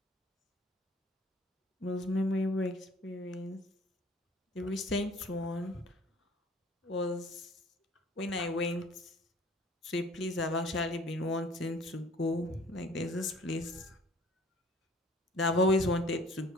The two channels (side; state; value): both; normal; correlation 0.51